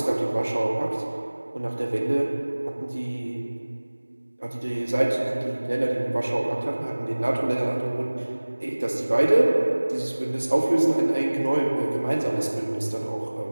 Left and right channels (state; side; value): inverted; both; correlation -1.00